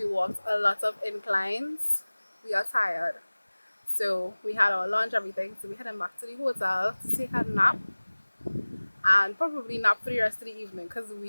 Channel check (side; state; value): both; inverted; correlation -1.00